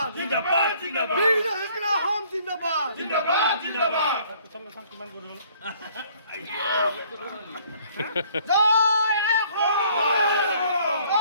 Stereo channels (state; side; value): inverted; both; correlation -0.59